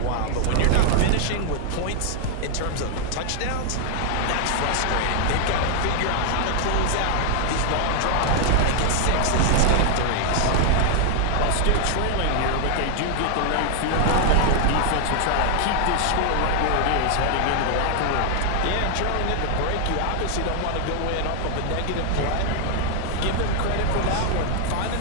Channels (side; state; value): both; different; correlation 0.00